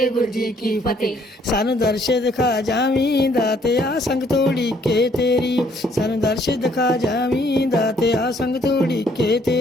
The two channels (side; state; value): both; normal; correlation 0.65